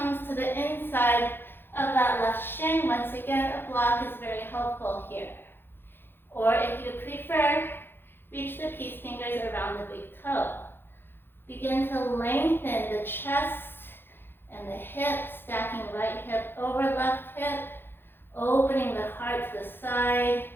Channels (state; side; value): late; right; 0.10 ms